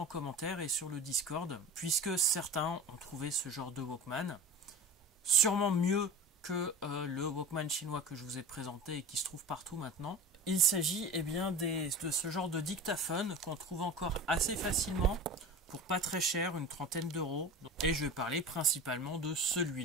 commentaire et sur le Discord, puisque certains ont trouvé ce genre de Walkman sûrement mieux que le Walkman chinois que je vous ai présenté et qui se trouve partout maintenant. Il s'agit de ce genre de dictaphone qu'on trouve encore assez facilement pour pas très cher, une trentaine d'euros. Et je vais parler principalement de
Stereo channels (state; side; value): normal; both; correlation 0.32